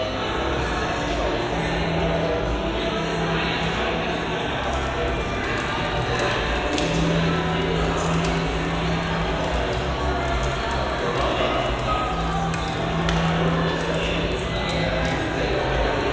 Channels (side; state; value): both; identical; correlation 1.00